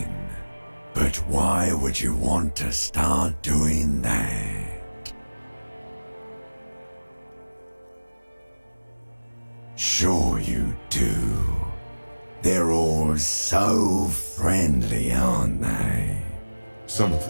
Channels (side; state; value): both; inverted; correlation -1.00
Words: But why would you want to start doing that? Sure you do. They're all so friendly, aren't they? Some of